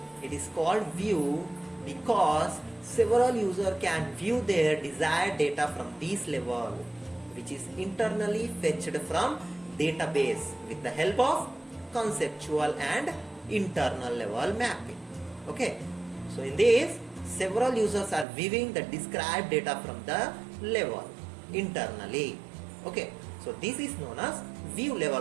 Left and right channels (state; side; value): drops out; left; at 18.2 s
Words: It is called view because several users can view their desired data from this level, which is internally fetched from database with the help of conceptual and internal level mapping. Okay, so in this, several users are viewing the described data from the level internally. Okay, so this is known as view